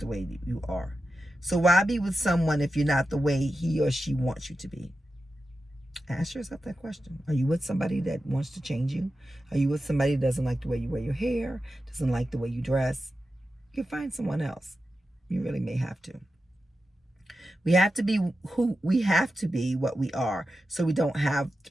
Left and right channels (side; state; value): both; normal; correlation 0.91